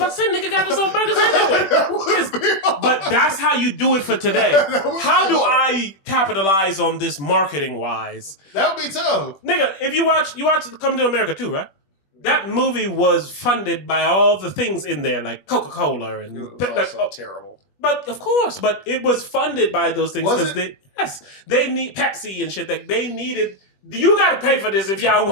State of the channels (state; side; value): late; right; 21 ms